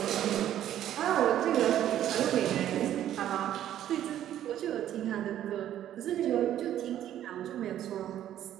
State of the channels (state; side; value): quieter; left; 11.6 dB